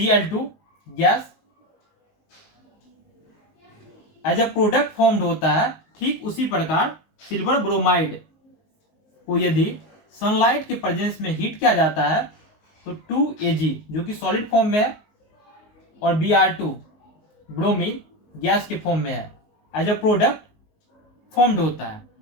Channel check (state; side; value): late; right; 19 ms